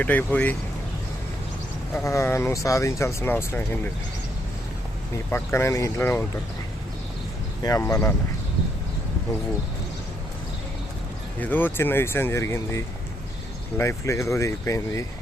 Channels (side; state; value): both; normal; correlation 0.74